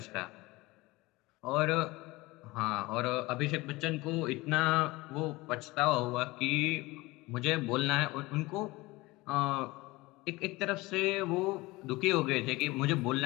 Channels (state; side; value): quieter; right; 21.3 dB